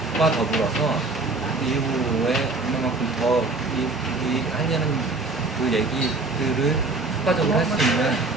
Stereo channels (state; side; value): quieter; left; 3.4 dB